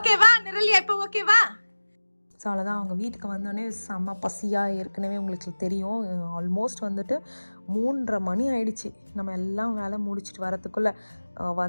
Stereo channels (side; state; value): both; inverted; correlation -1.00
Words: நிரலியா? இப்போ ஓகேவா? ஸோ அவ்வளோதான். அவங்க வீட்டுக்கு வந்தோடனே செம்ம பசியாக ஏற்கனவே உங்களுக்கு தெரியும். ஆல்மோஸ்ட் வந்துட்டு 3:30 மணி ஆயிடுச்சு. நம்ம எல்லாம் வேலை முடிச்சுட்டு வரத்துக்குள்ளே